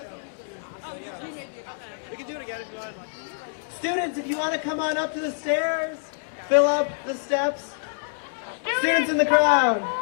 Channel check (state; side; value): silent; right; digital silence